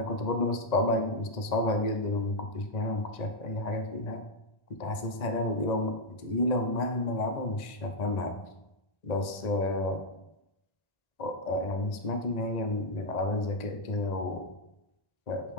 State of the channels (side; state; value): right; late; 1.8 ms